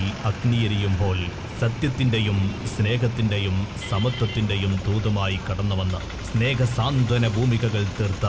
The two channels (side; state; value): both; identical; correlation 1.00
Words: അഗ്നിയെരിയുമ്പോൾ സത്യത്തിന്റെയും സ്നേഹത്തിന്റെയും സമത്വത്തിന്റെയും ദൂതമായി കടന്നുവന്ന് സ്നേഹസാന്ത്വന ഭൂമികകൾ തീർത്ത